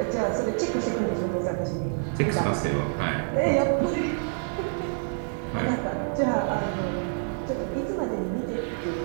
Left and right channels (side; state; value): left; silent; 58 dB below the other